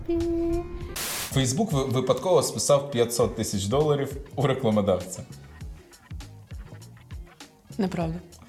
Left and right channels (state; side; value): identical; both; correlation 1.00